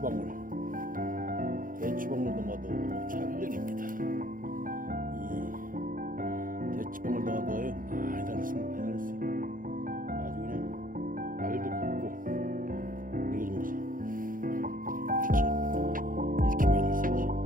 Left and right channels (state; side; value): late; left; 0.40 ms